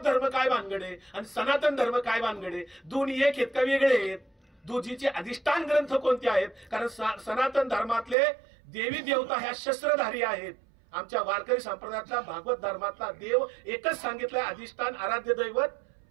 धर्म काय भानगडे आणि सनातन धर्म काय भानगडे, दोन्ही एक आहेत का वेगळे आहेत, दोजीचे अधिष्ठान ग्रंथ कोणते आहेत. कारण सनातन धर्मातले देवी देवता ह्या शस्त्रधारी आहेत. आमच्या वारकरी संप्रदायातला भागवत धर्मातला देव एकच सांगितलाय, अधिष्ठान आराध्य दैवत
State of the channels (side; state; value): left; drops out; at 8.2 s